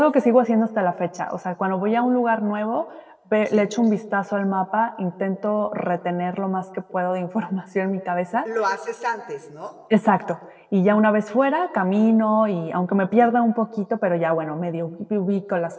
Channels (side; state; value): both; identical; correlation 1.00